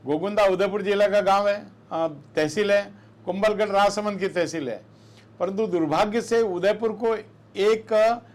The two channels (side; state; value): both; identical; correlation 1.00